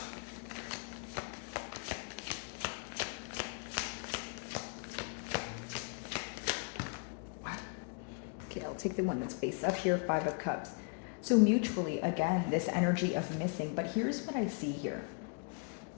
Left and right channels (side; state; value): right; quieter; 38.6 dB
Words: Okay, I'll take the one that's face up here, 5 of Cups. So mutually, again, this energy of missing. But here's what I see here.